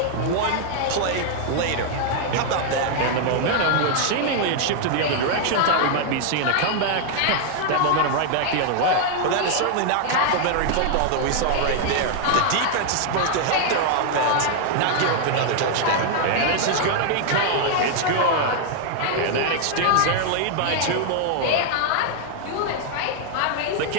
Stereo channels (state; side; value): different; both; correlation 0.00